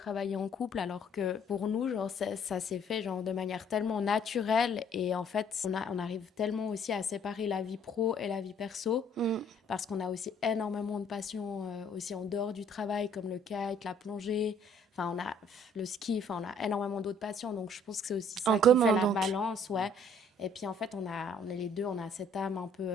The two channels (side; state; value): both; normal; correlation 0.60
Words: en couple, alors que pour nous, genre, ça s'est fait genre, de manière tellement naturelle et en fait, on arrive tellement aussi à séparer la vie pro et la vie perso parce qu'on a aussi énormément de passions aussi en dehors du travail comme le kite, la plongée. Enfin, on a le ski, enfin, on a énormément d'autres passions, donc je pense que c'est aussi ça En qui commun, fait la donc. balance, ouais. Et puis en fait, on est les deux, on a cette âme un